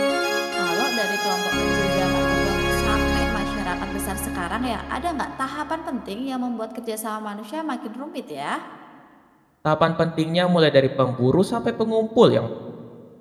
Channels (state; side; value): identical; both; correlation 1.00